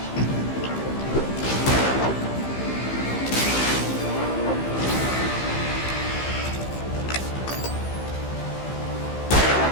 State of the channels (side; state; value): right; late; 15 ms